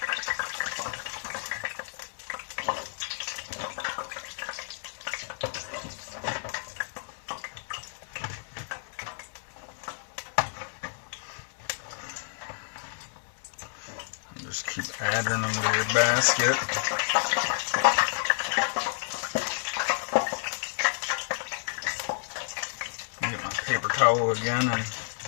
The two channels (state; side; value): silent; right; 58 dB below the other